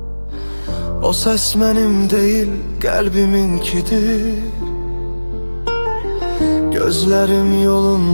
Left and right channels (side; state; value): both; inverted; correlation -1.00